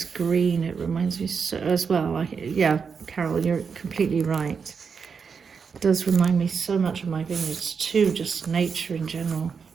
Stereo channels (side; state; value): left; quieter; 5.9 dB